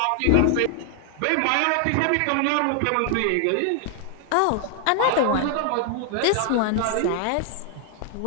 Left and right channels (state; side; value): different; both; correlation 0.00